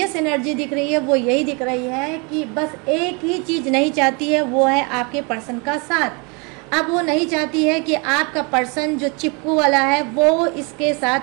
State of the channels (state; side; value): quieter; left; 31.7 dB